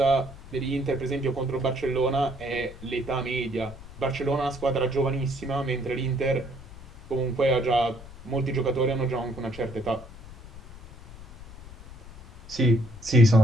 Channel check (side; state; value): left; noise; rumble, 16 dB below the sound